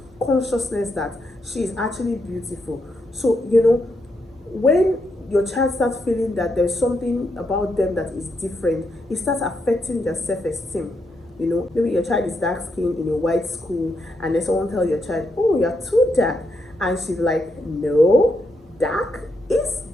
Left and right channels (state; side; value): normal; both; correlation 0.81